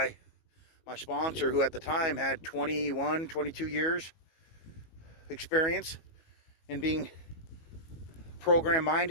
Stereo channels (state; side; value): late; right; 19 ms